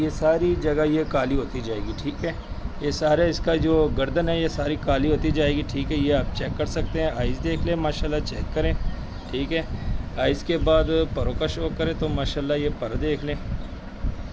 सारी जगह ये काली होती जाएगी, ठीक है। ये सारे इसका जो गर्दन है ये सारी काली होती जाएगी, ठीक है। ये आप चेक कर सकते हैं। आइज़ देख लें, माशाल्लाह चेक करें, ठीक है। आइज़ के बाद परों का शौक करें तो माशाल्लाह ये पर देख लें,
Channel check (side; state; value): both; identical; correlation 1.00